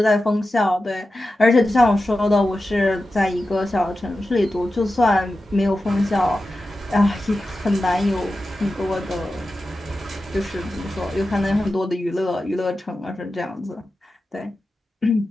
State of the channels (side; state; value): both; normal; correlation 0.92